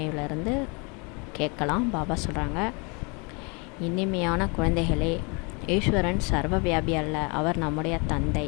கேட்கலாம். பாபா சொல்கிறாங்க, இனிமையான குழந்தைகளே, ஈஸ்வரன் சர்வ வியாபி அல்ல, அவர் நம்முடைய தந்தை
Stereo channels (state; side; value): quieter; right; 31.6 dB